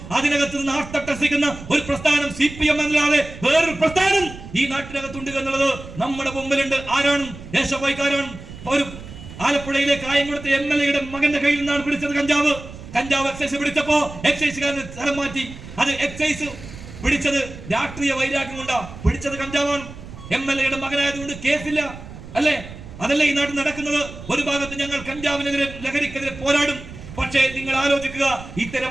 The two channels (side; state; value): right; noise; rumble, 14 dB below the sound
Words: അതിനകത്ത് നിന്ന് ആർത്തട്ടഹസിക്കുന്ന ഒരു പ്രസ്ഥാനം CPM അല്ലാതെ വേറൊരു പ്രസ്ഥാനം ഈ നാട്ടിനകത്തുണ്ട് എന്നുള്ളത് നമ്മുടെ മുമ്പിലുണ്ട്. ആരാണ്? SFI-ക്കാരാണ്. ഒരു ആലപ്പുഴയിലെ കായംകുളത്തെ MLA-യുടെ മകന്റെ കയ്യിൽ നിന്നാണ് പിടിച്ചത് കഞ്ചാവ് എക്സൈസ് പിടിച്ചപ്പോ എക്സൈസുകാരന് സ്ഥലം മാറ്റി. അത് എക്സൈസ് പിടിച്ചത് രാഷ്ട്രീയ വൈരാഗ്യം കൊണ്ടാ പിടിച്ചത്. കഞ്ചാവാണ്. MLA-യുടെ മകനായതുകൊണ്ട് കേസില്ല, അല്ലേ? അതല്ലേ ഈ നാട്ടിൽ നടക്കുന്നത്? ഒരു ഭാഗത്ത് ഞങ്ങൾ കഞ്ചാവിനെതിരെ, ലഹരിക്കെതിരെ പോരാടും. പക്ഷേ നിങ്ങൾ ആലോചിക്കുക, ഇത്തരം